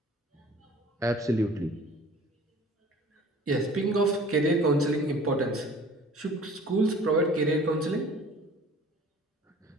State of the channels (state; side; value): normal; both; correlation 0.48